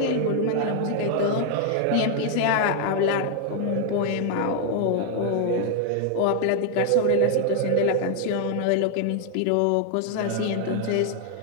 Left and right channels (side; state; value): both; different; correlation 0.00